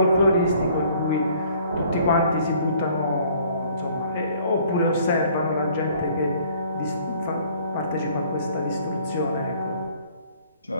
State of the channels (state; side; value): inverted; both; correlation -0.57